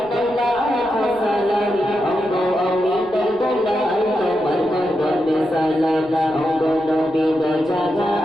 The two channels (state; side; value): noise; right; rumble, 26 dB below the sound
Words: সালাম আমগো আমি দরদলা তোমার কদমে সালাম আমগো নবী তো